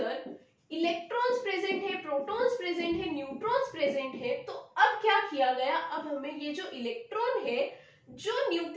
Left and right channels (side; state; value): both; identical; correlation 1.00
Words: इलेक्ट्रॉन्स प्रेजेंट है, प्रोटॉन्स प्रेजेंट है, न्यूट्रॉन्स प्रेजेंट है, तो अब क्या किया गया, अब हमें ये जो इलेक्ट्रॉन है जो